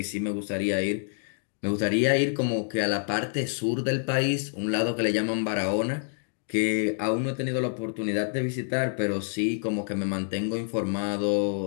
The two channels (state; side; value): silent; right; digital silence